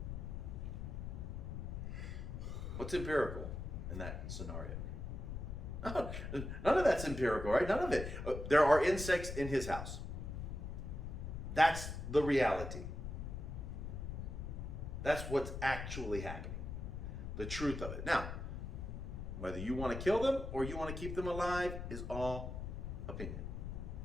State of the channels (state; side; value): noise; left; rumble, 6 dB below the sound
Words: What's empirical in that scenario? None of that's empirical, right? None of it. There are insects in his house. That's the reality. That's what's actually happening. The truth of it. Now, whether you want to kill them or you want to keep them alive is all opinion.